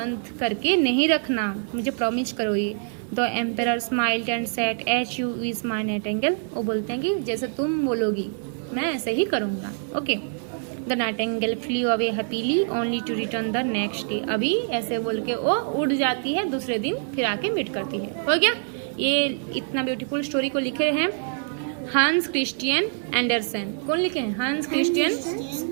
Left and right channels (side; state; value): left; silent; 62 dB below the other